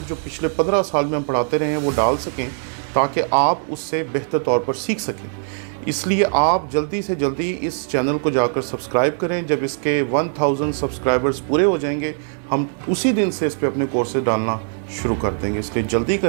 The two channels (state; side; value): silent; left; 65 dB below the other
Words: جو پچھلے 15 سال میں ہم پڑھاتے رہے ہیں وہ ڈال سکیں تاکہ آپ اس سے بہتر طور پر سیکھ سکیں۔ اس لیے آپ جلدی سے جلدی اس چینل کو جا کر سبسکرائب کریں۔ جب اس کے 1000 سبسکرائبرز پورے ہو جائیں گے ہم اسی دن سے اس پہ اپنے کورسز ڈالنا شروع کر دیں گے، اس لیے جلدی